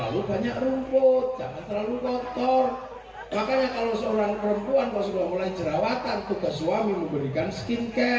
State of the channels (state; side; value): identical; both; correlation 1.00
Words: banyak rumput, jangan terlalu kotor. Makanya kalau seorang perempuan kalau sudah mulai jerawatan, tugas suami memberikan